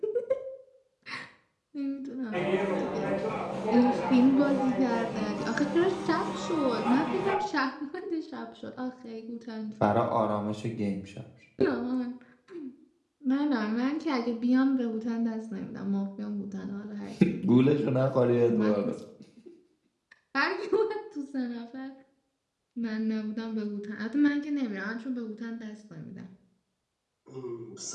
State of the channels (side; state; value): both; identical; correlation 1.00